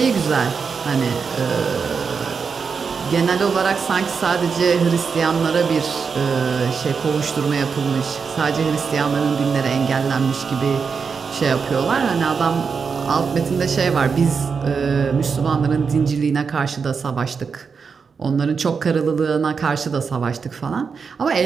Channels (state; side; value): quieter; left; 5.6 dB